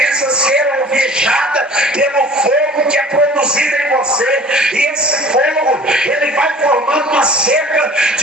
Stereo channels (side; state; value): both; normal; correlation 0.46